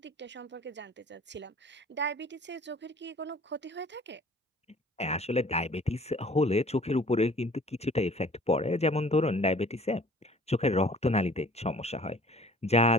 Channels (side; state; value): both; normal; correlation 0.51